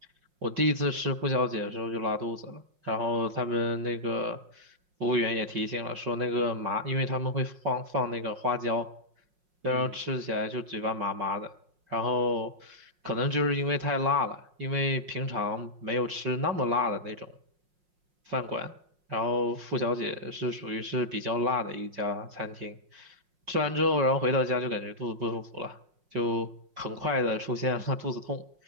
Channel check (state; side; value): late; left; 5.5 ms